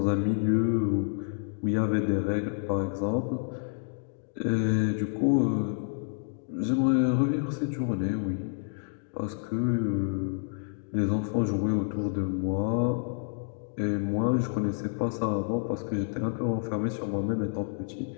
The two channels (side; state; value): right; silent; digital silence